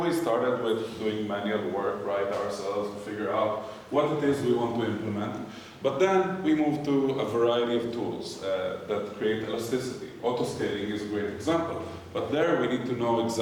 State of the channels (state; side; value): identical; both; correlation 1.00